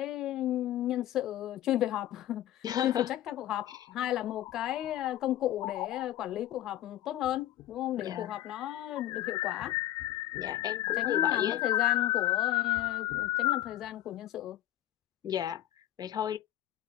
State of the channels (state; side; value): quieter; right; 13.1 dB